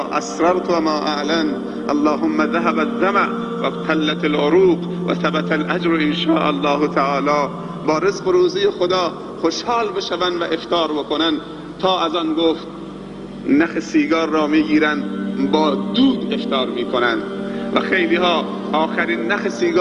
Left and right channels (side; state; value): both; identical; correlation 1.00